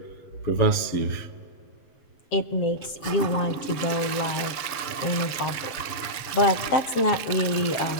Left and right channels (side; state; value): right; late; 6.9 ms